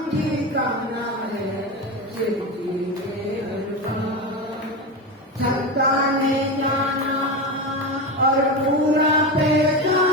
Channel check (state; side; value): normal; both; correlation 0.19